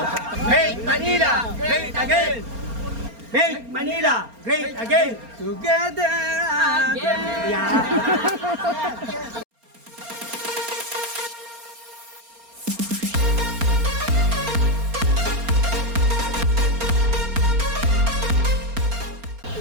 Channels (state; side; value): late; left; 4.3 ms